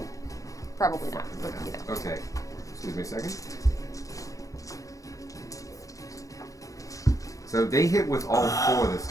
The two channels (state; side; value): late; right; 0.16 ms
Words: Probably not, but you know. Okay. Excuse me a second. So they hit with all 4 this